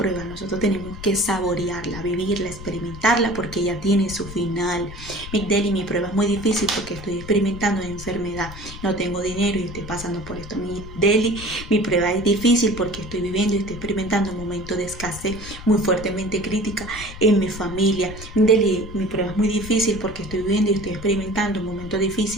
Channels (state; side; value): noise; left; rumble, 13 dB below the sound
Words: nosotros tenemos que saborearla, vivirla, experimentarla, porque ella tiene su final. Migdeli, mi prueba es muy difícil porque estoy experimentando una enfermedad, no tengo dinero y estoy pasando por esto. Migdeli, mi prueba es difícil porque estoy viviendo y estoy experimentando un momento de escasez muy fuertemente crítica en mi familia. Mi prueba es muy difícil porque estoy viviendo y estoy experimentando un momento